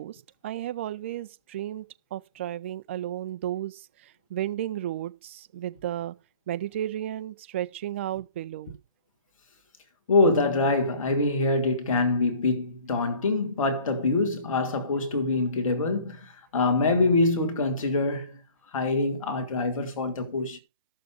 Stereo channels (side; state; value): both; inverted; correlation -0.49